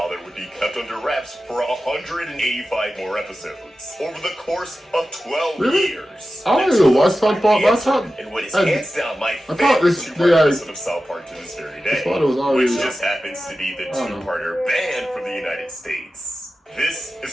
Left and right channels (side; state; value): both; normal; correlation 0.94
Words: would be kept under wraps for 185 more episodes, over the course of 12 years. I don't even watch Southpark. And what is hands down my favorite two-part episode of Southpark to this very day, which just happens to be the two-parter banned from the United States. This